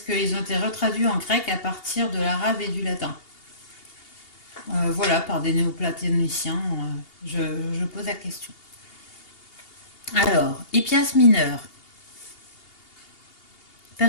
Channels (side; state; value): right; late; 2.8 ms